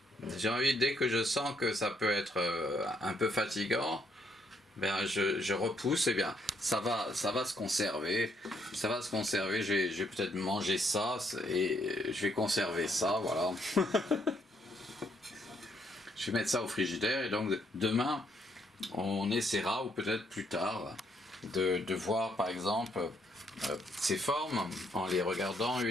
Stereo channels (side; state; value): both; normal; correlation 0.72